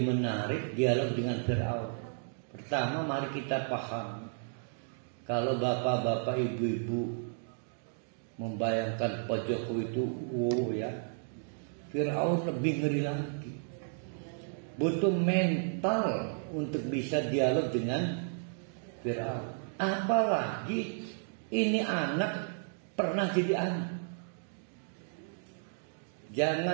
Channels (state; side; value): silent; left; digital silence